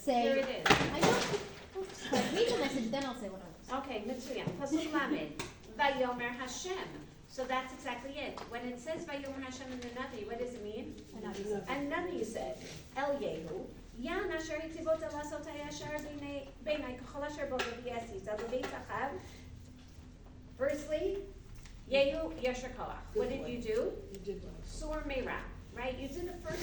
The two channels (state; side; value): identical; both; correlation 1.00